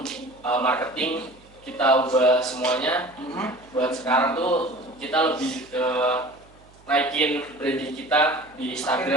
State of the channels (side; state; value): right; noise; hum, 27 dB below the sound